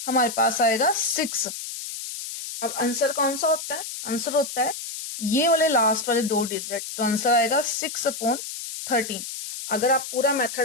हमारे पास आएगा 6। अब आंसर कौन सा होता है, आंसर होता है ये वाले लास्ट वाले 2 डिजिट, तो आंसर आएगा 6/13। अगर आप पूरा मेथड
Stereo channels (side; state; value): left; noise; hiss, 8 dB below the sound